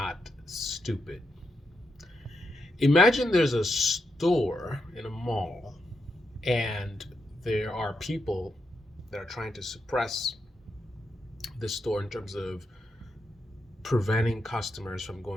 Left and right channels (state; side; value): normal; both; correlation 0.84